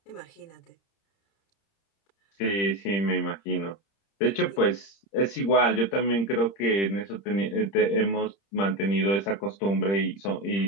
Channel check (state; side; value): late; right; 30 ms